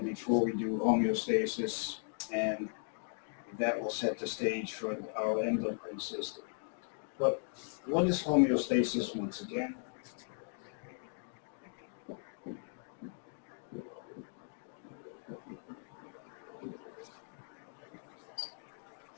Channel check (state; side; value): silent; right; digital silence